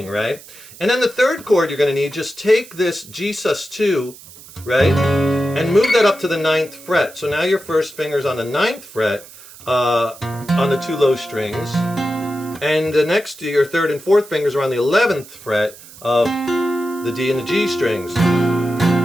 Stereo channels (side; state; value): right; noise; hiss, 19 dB below the sound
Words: right? And then the 3rd chord you're going to need, just take this G sus2, right, and move that up to the 9th fret. So now your 1st finger's on the 9th fret on the 2 low strings, and the next to your 3rd and 4th fingers are on the 11th fret of the D and the G strings.